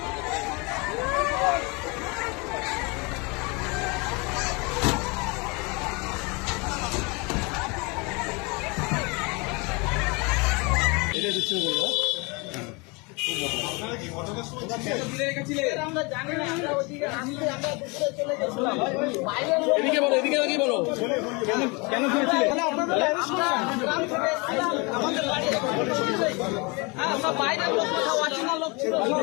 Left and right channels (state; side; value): quieter; right; 28.7 dB